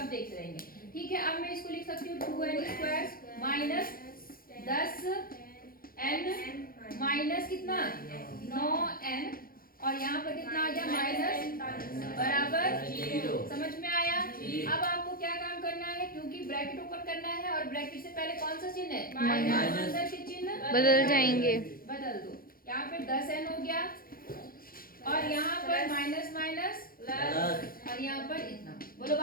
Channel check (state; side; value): late; right; 0.42 ms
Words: देखते रहेंगे। ठीक है, अब मैं इसको लिख सकती हूँ 2n² माइनस 10n माइनस कितना? 9n, और यहाँ पर कितना आ गया? माइनस बराबर 0। समझ में आया? अब आपको क्या काम करना है, क्योंकि ब्रैकेट ओपन करना है और ब्रैकेट से पहले कौन सा चिन्ह है? माइनस। अंदर के चिन्ह बदल जाएंगे, बदल दो। यहाँ पे 10n हो गया और यहाँ पर माइनस माइनस प्लस और यहाँ पर इतना। बोलो